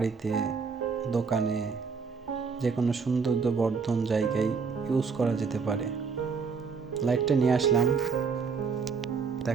দোকানে, যে কোনো সৌন্দর্যবর্ধন জায়গায় ইউজ করা যেতে পারে। লাইটটা নিয়ে আসলাম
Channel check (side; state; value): left; quieter; 5.3 dB